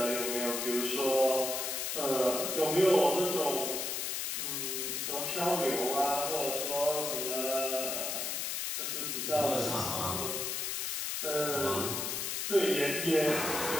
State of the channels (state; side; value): noise; left; hiss, 1 dB below the sound